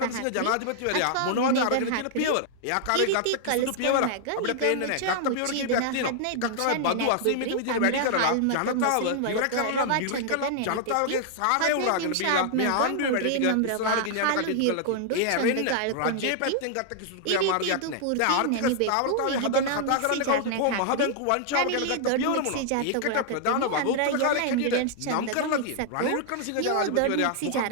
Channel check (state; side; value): different; both; correlation 0.00